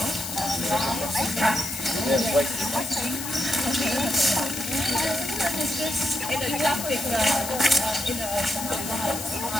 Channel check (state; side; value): noise; left; hiss, 7 dB below the sound